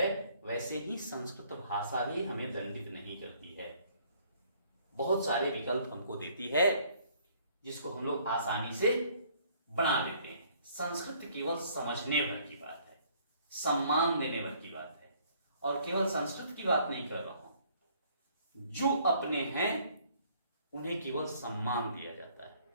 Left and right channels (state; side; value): inverted; both; correlation -0.61